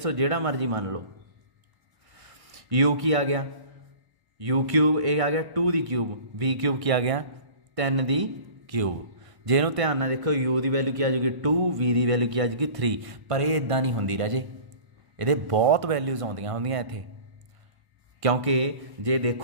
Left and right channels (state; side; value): late; left; 1.1 ms